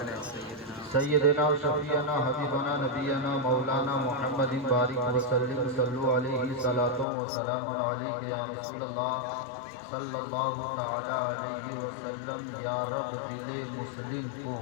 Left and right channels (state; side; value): drops out; right; at 7.1 s